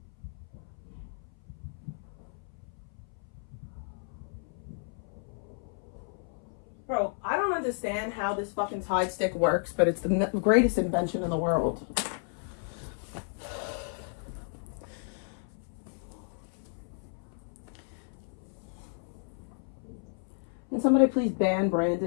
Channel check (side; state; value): right; silent; 56 dB below the other